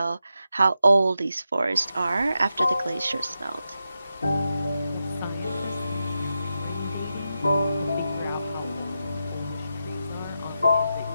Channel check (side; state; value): both; inverted; correlation -0.88